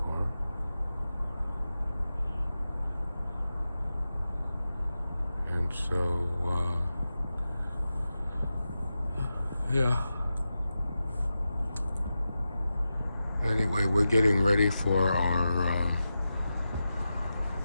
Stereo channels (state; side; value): inverted; both; correlation -0.92